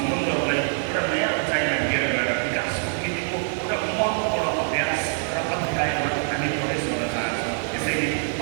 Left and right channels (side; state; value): left; silent; 60 dB below the other